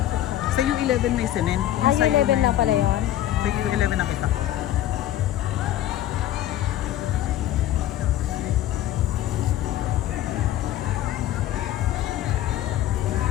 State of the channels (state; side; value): quieter; right; 13.0 dB